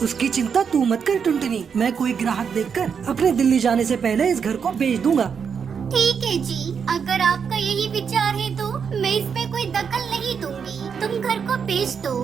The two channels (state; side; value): quieter; left; 6.7 dB